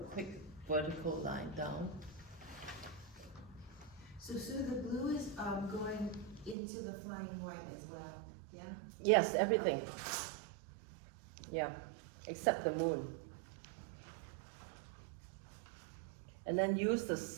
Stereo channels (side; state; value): left; drops out; at 6.6 s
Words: quick vertical line down. So Sue, the blue is going into the flying white as well, yeah? Yes, everything. Yeah, except the moon. And then use the